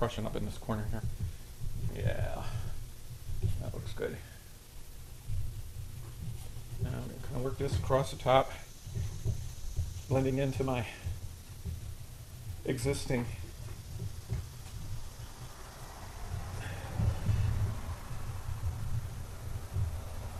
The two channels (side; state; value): both; identical; correlation 1.00